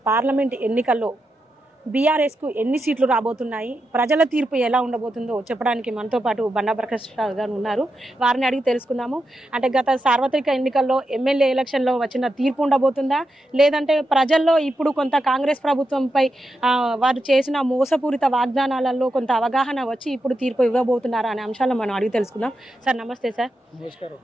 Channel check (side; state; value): both; normal; correlation 0.86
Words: పార్లమెంట్ ఎన్నికల్లో బీఆర్ఎస్కు ఎన్ని సీట్లు రాబోతున్నాయి, ప్రజల తీర్పు ఎలా ఉండబోతుందో చెప్పడానికి మనతో పాటు బండా ప్రకాష్ రావు గారు ఉన్నారు. వారిని అడిగి తెలుసుకుందాము. అంటే గత సార్వత్రిక ఎన్నికల్లో ఎమ్మెల్యే ఎలక్షన్లో వచ్చిన తీర్పు ఉండబోతుందా, లేదంటే ప్రజల్లో ఇప్పుడు కొంత కాంగ్రెస్ ప్రభుత్వంపై వారు చేసిన మోసపూరిత వాగ్దానాలలో కొంత అవగాహన వచ్చి ఇప్పుడు తీర్పు ఇవ్వబోతున్నారా అనే అంశాలను మనం అడిగి తెలుసుకుందాం. సార్ నమస్తే. సార్ నమస్కారం.